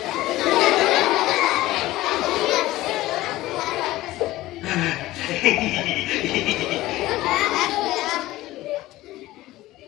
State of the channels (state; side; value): quieter; right; 17.0 dB